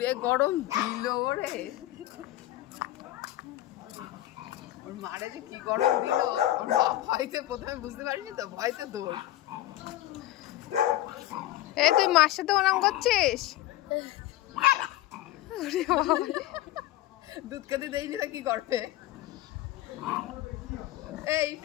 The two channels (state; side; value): quieter; right; 15.0 dB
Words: গরম দিল ওরে। ওর মারে যে কি গরম দিল, ওর মা ভয়তে প্রথমে বুঝতে পারিনি তো, ভয়তে দৌড়। এই তুই মার সাথে ওরম করছিস? দুধ খেতে দেয়নি তো কি করবে? এই